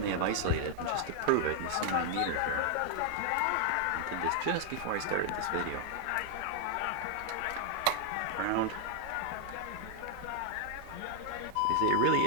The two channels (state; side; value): different; both; correlation 0.00